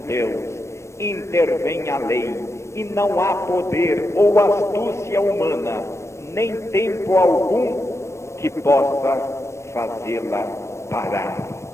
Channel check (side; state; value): right; late; 0.13 ms